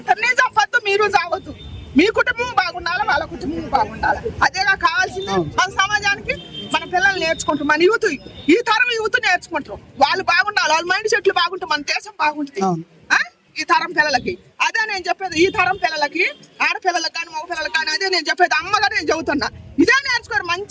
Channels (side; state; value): both; identical; correlation 1.00